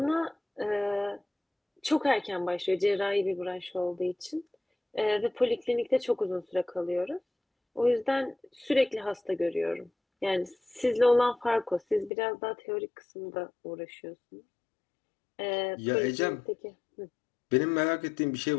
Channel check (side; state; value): right; drops out; at 12.1 s